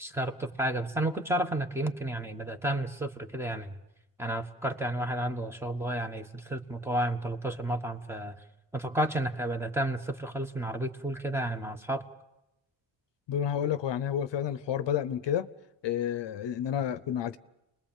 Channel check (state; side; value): normal; both; correlation 0.38